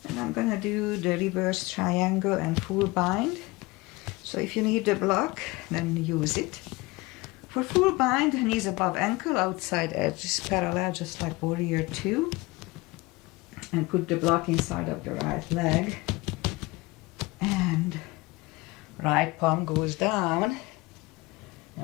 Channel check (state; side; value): quieter; right; 22.5 dB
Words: And I'm gonna do the reverse triangle and full bind. So if you need the block, then use it. For full bind, knees above ankle, outside edge is parallel, just like warrior 2. And put the block inside of the right leg. And right palm goes down.